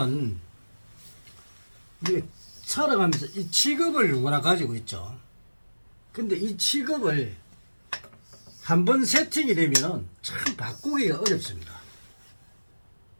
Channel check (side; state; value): both; inverted; correlation -1.00